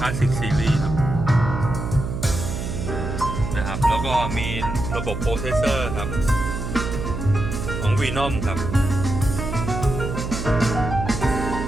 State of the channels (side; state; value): right; noise; hum, 5 dB below the sound